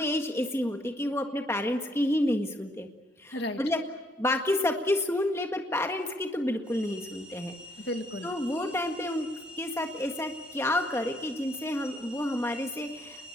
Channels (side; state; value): both; normal; correlation 0.69